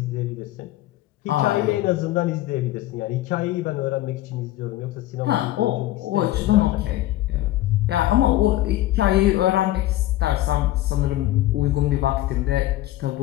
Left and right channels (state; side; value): quieter; right; 15.4 dB